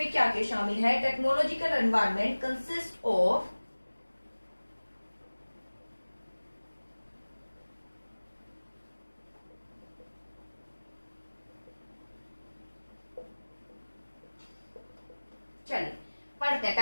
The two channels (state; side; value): inverted; both; correlation -1.00